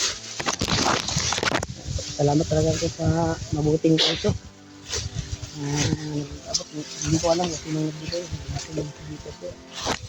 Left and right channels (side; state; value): both; identical; correlation 1.00